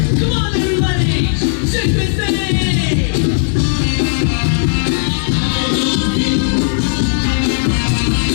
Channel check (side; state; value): right; silent; digital silence